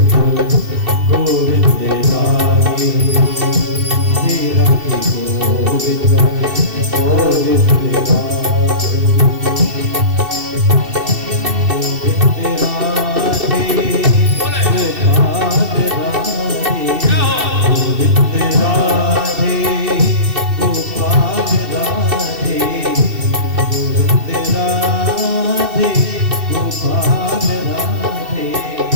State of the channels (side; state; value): left; late; 2.7 ms